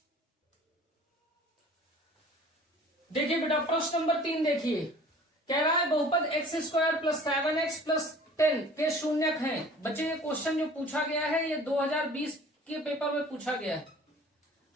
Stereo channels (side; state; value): both; normal; correlation 0.47